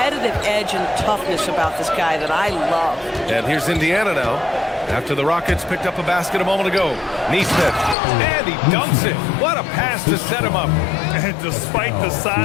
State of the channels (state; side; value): drops out; right; at 8.0 s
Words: edge and toughness about this guy that I love. And here's Indiana now. After the Rockets picked up a basket a moment ago. Nesmith, and he dunks it. What a pass to set him up. And despite the